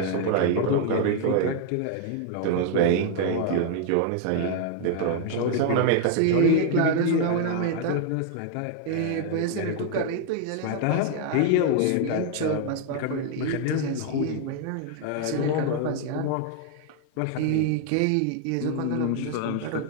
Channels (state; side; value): different; both; correlation 0.00